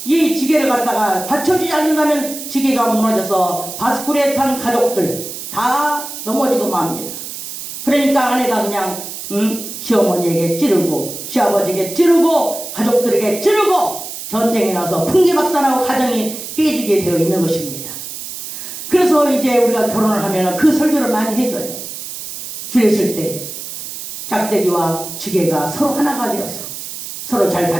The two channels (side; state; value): right; noise; hiss, 9 dB below the sound